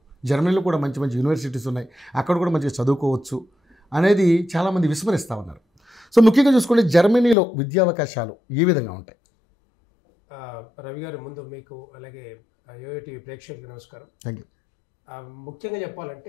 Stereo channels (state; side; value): drops out; right; at 7.4 s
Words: జర్మనీలో కూడా మంచి మంచి యూనివర్సిటీస్ ఉన్నాయి, అక్కడ కూడా మంచిగా చదువుకోవచ్చు అనేది చాలామంది విస్మరిస్తూ ఉన్నారు. సో ముఖ్యంగా చూసుకుంటే జర్మనీలో విద్యావకాశాలు ఏ విధంగా ఉంటాయి? రవి గారు, ముందు మీకు అలాగే యోయో టీవీ ప్రేక్షకులకు నమస్కారం. Thank you. ముఖ్యంగా